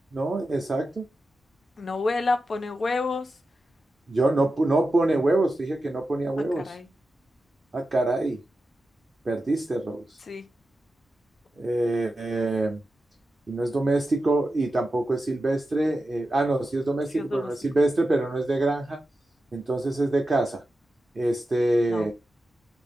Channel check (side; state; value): both; normal; correlation 0.91